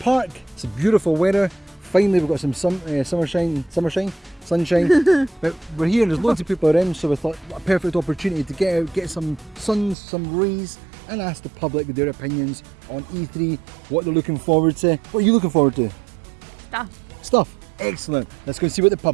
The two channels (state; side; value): drops out; left; at 10.0 s